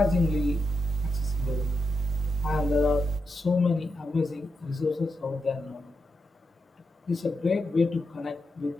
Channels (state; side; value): normal; both; correlation 0.86